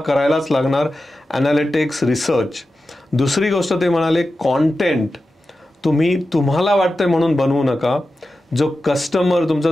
लागणार, ॲनालिटिक्स, रिसर्च. दुसरी गोष्ट ते म्हणाले, कॉन्टेंट तुम्ही तुम्हाला वाटतंय म्हणून बनवू नका. जो कस्टमर, तुमचा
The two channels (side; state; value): both; normal; correlation 0.92